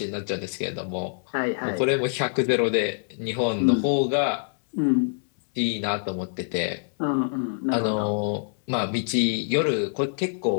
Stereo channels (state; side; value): silent; right; digital silence